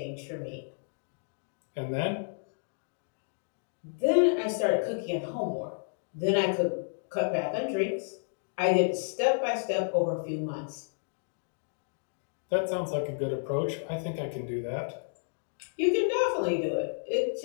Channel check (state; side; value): silent; right; digital silence